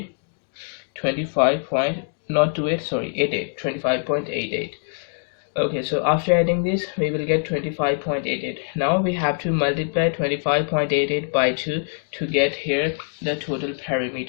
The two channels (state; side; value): silent; right; digital silence